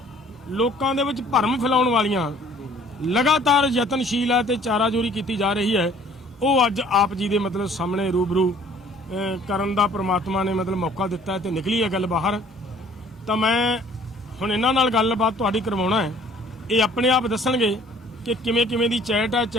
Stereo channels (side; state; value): both; normal; correlation 0.55